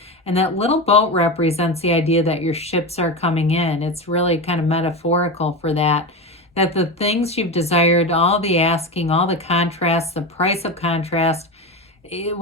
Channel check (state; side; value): normal; both; correlation 0.20